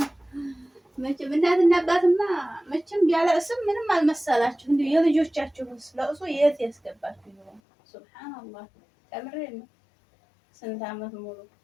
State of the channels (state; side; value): drops out; right; at 7.6 s